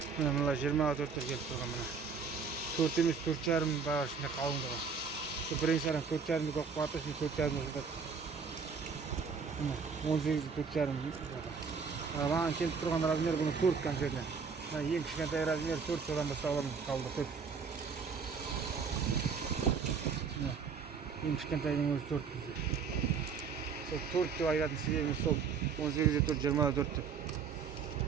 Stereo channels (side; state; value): left; quieter; 5.7 dB